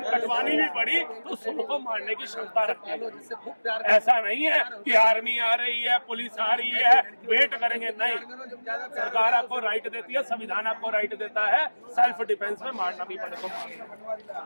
कटवानी भी पड़ी तो सबको मारने की क्षमता रखते हैं। ऐसा नहीं है कि आर्मी आ रही है, पुलिस आ रही है, वेट करेंगे, नहीं। सरकार आपको राइट देती है, संविधान आपको राइट देता है, सेल्फ डिफेंस में मारना भी पड़े तो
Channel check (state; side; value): inverted; both; correlation -1.00